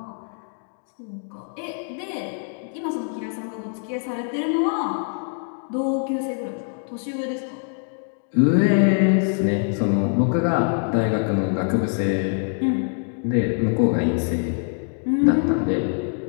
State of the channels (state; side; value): silent; right; 59 dB below the other